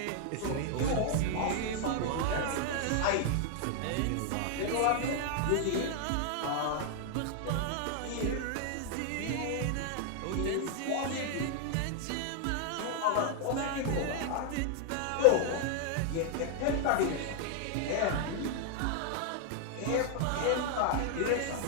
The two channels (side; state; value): both; different; correlation 0.00